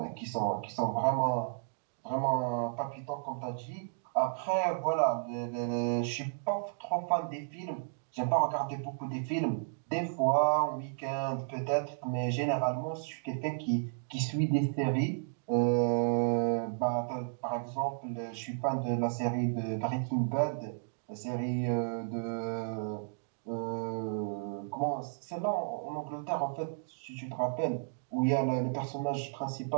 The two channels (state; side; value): silent; left; digital silence